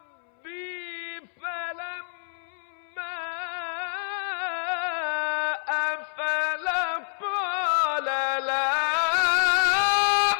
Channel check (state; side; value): silent; right; 60 dB below the other